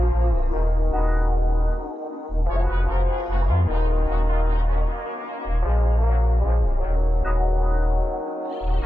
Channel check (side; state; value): both; normal; correlation 0.92